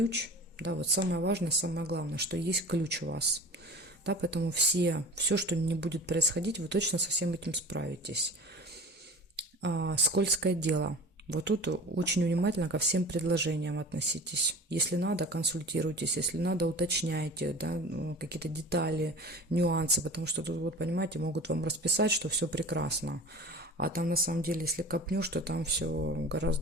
Да, вот самое важное, самое главное, что есть ключ у вас. Да, поэтому все, что не будет происходить, вы точно со всем этим справитесь. Скользкое дело. Вот тут очень внимательно ко всем предложениям относитесь. Если надо, консультируйтесь, если надо, уточняйте, да, какие-то детали, нюансы, потому что тут, вот, понимаете, могут вам расписать, что все прекрасно. А там на самом деле, если копнешь, то там все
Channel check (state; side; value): normal; both; correlation 0.38